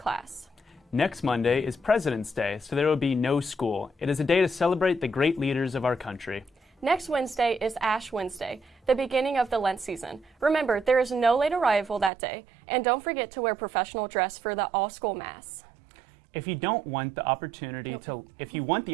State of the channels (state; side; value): drops out; left; at 12.1 s